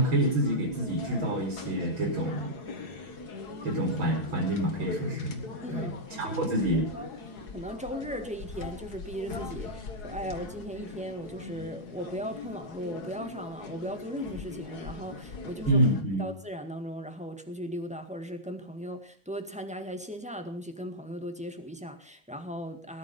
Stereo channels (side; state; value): both; normal; correlation -0.06